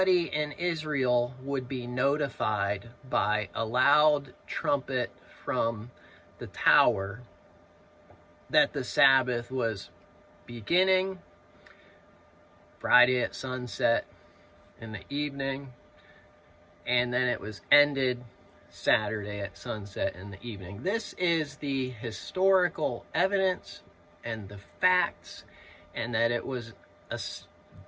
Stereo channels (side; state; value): both; identical; correlation 1.00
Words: in Israel would be notified by a loud trumpet from the tower that the Sabbath was beginning Friday at sunset in the evening, and then it was ended Saturday at sunset in the evening. This is the historical evidence and the facts, and that it was